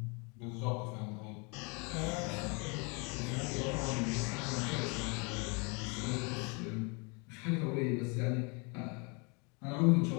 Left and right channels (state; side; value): quieter; right; 32.1 dB